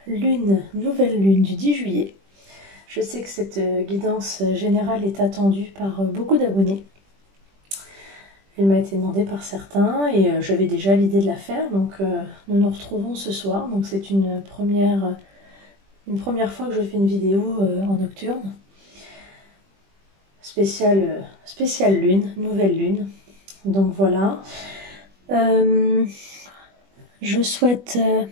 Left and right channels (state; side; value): late; left; 20 ms